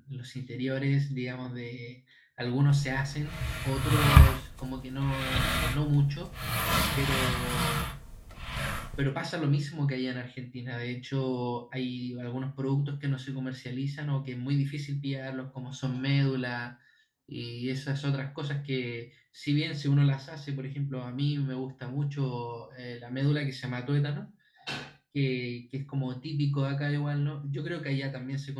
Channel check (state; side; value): identical; both; correlation 1.00